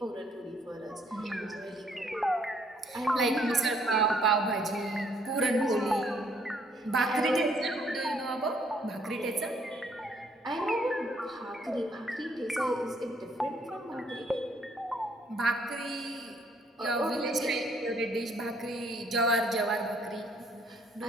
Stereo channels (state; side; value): normal; both; correlation 0.66